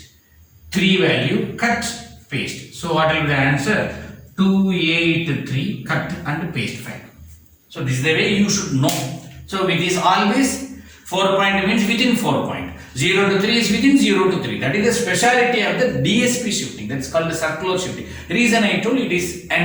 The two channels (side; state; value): both; identical; correlation 1.00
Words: 3 value, cut, paste. So what will be the answer? 2, 8, 3, cut and paste 5. So this is the way you should know. So it is always 4 point means within 4 point. 0 to 3 is within 0 to 3. That is the speciality of the DSP shifting. That's called the circular shifting. The reason I told it is